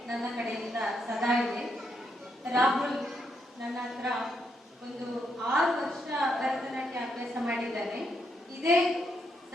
ನನ್ನ ಕಡೆಯಿಂದ ಸದಾ ಇದೆ. ರಾಹುಲ್ ನನ್ನ ಹತ್ರ ಒಂದು 6 ವರ್ಷ ಭರತನಾಟ್ಯ ಅಭ್ಯಾಸ ಮಾಡಿದ್ದಾನೆ. ಇದೇ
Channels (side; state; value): both; normal; correlation 0.78